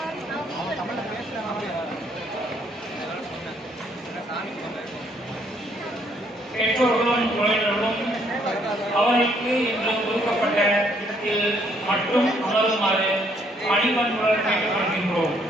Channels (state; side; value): normal; both; correlation 0.67